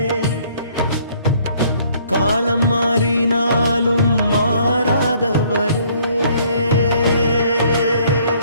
காலம் மாறினாலும் மாறாதவரே,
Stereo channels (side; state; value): both; inverted; correlation -0.62